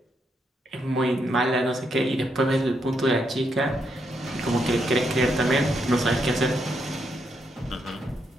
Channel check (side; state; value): both; normal; correlation 0.79